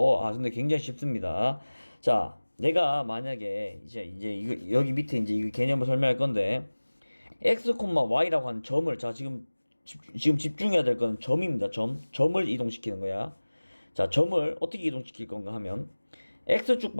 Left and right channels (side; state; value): both; inverted; correlation -1.00